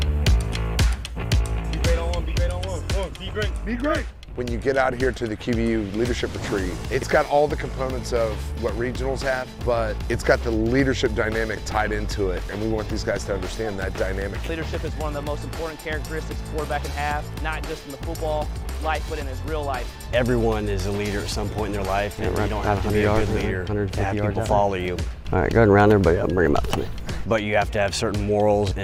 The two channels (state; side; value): identical; both; correlation 1.00